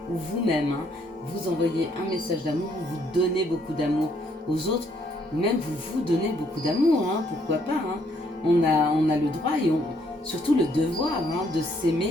ou vous-même, hein, vous envoyez un message d'amour, vous donnez beaucoup d'amour aux autres, ou même vous donnez beaucoup d'amour, hein, pourquoi pas. Hein. On a le droit et surtout le devoir, hein, de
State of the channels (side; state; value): both; normal; correlation 0.69